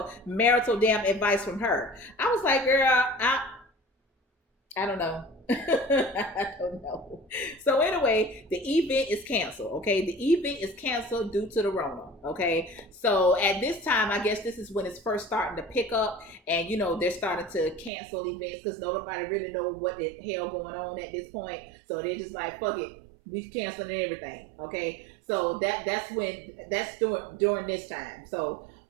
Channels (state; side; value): drops out; left; at 17.9 s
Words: marital damn advice from her? I was like, girl, I don't know. I don't know. So anyway, the event is canceled. Okay. The event is canceled due to the Rona. Okay. So at this time, I guess this is when it's first starting to pick up, and they're starting to cancel events because nobody really know what the hell going on at this point. So they're just like, fuck it, we canceling everything. Okay. So that's during this time. So